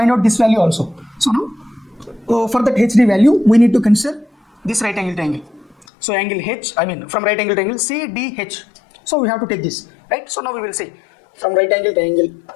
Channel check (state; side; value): drops out; right; at 5.9 s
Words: out this value also. So now for that HD value we need to consider this right angle triangle. So angle H, from right angle triangle CDH. So we have to take this, right? So now we will see from right angle triangle